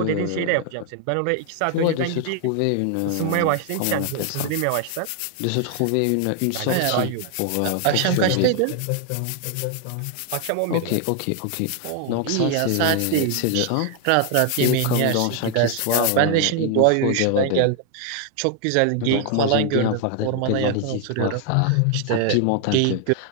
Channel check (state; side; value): different; both; correlation 0.00